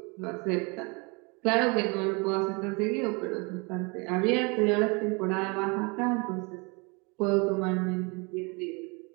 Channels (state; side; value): quieter; left; 29.9 dB